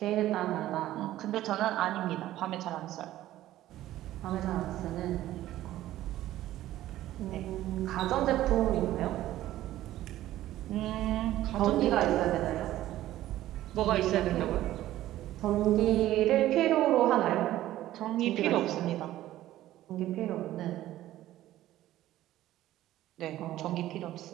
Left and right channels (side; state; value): left; quieter; 14.3 dB